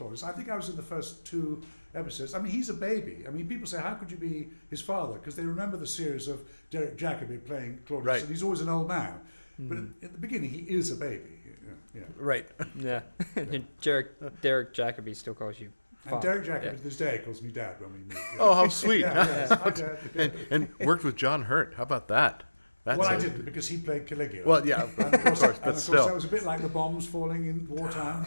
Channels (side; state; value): both; inverted; correlation -1.00